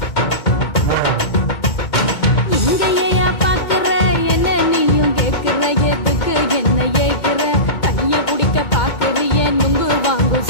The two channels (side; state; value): right; late; 2.2 ms